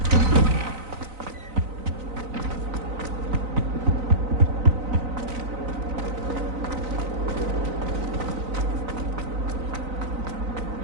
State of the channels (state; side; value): late; left; 3.9 ms